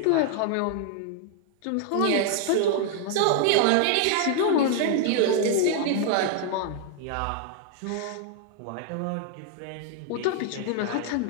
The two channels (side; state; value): both; different; correlation 0.00